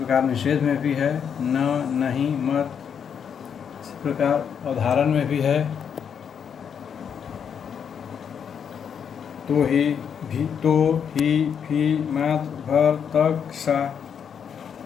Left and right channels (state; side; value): quieter; right; 7.6 dB